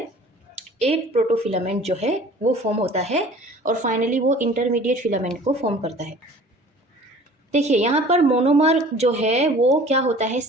8 प्रोटोफिलामेंट जो है वो फॉर्म होता है और फाइनली वो इंटरमीडिएट फिलामेंट को फॉर्म करता है। देखिए यहाँ पर मोनोमर जो है वो क्या होता है,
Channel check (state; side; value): normal; both; correlation 0.47